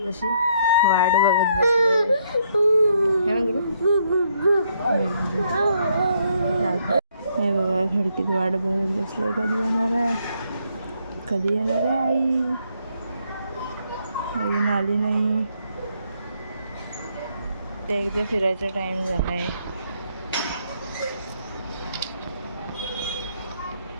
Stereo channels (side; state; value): both; inverted; correlation -0.72